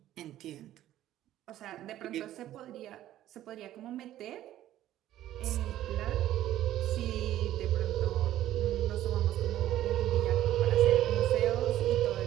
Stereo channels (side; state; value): left; quieter; 13.2 dB